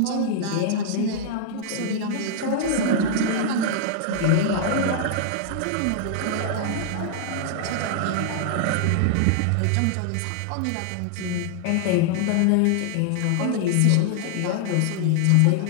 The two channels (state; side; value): different; both; correlation -0.01